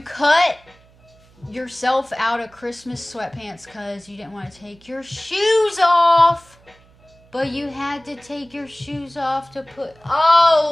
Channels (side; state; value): right; noise; hum, 29 dB below the sound